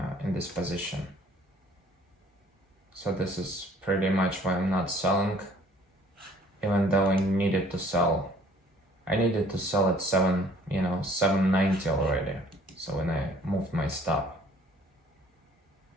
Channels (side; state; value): both; normal; correlation 0.56